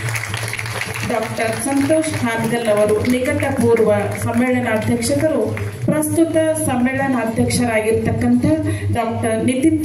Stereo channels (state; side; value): identical; both; correlation 1.00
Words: ಡಾಕ್ಟರ್ ಸಂತೋಷ್ ಹಾನಗಲ್ ಅವರು ನಿಕಟಪೂರ್ವ ಸಮ್ಮೇಳನಾಧ್ಯಕ್ಷರು ಪ್ರಸ್ತುತ ಸಮ್ಮೇಳನಾಧ್ಯಕ್ಷರಾಗಿರ್ತಕ್ಕಂಥ ಡಾಕ್ಟರ್ ನಿತಿನ್